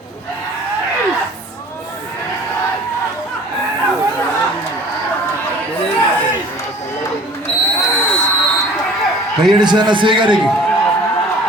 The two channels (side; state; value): both; normal; correlation 0.47